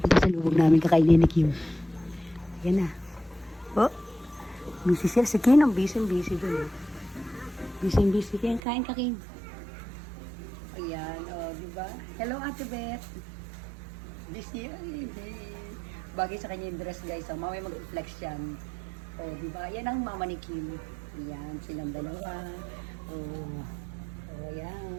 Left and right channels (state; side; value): drops out; left; at 8.6 s